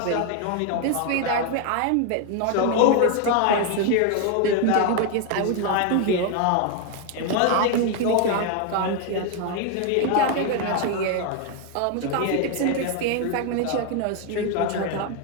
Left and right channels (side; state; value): both; different; correlation 0.01